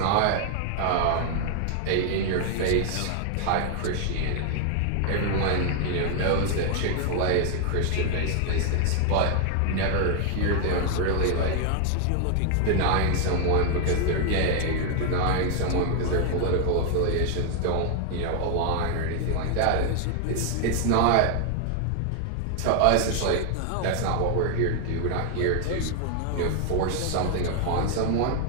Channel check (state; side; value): different; both; correlation 0.00